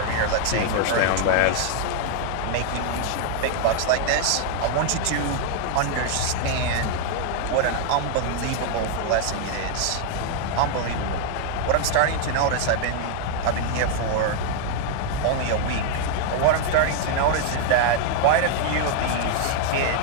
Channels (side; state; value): both; different; correlation 0.00